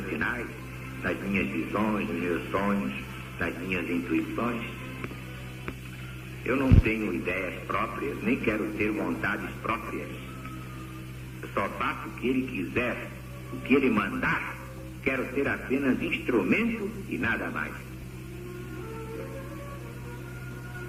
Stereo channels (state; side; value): identical; both; correlation 1.00